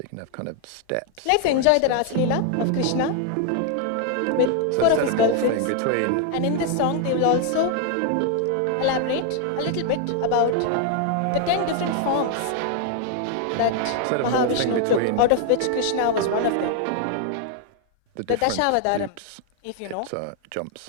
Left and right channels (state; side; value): different; both; correlation 0.00